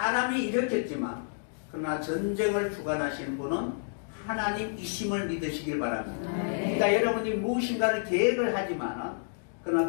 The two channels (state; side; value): silent; right; digital silence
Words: 일으켰지만 그러나 전쟁을 주관하시는 분은 하나님이심을 믿으시길 바랍니다. 그러니까 여러분이 무엇인가를 계획을 하지만